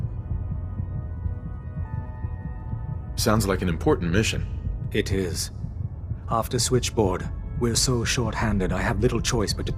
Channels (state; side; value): identical; both; correlation 1.00